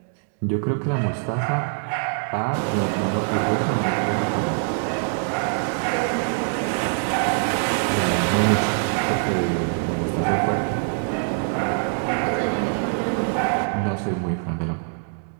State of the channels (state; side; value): silent; left; 62 dB below the other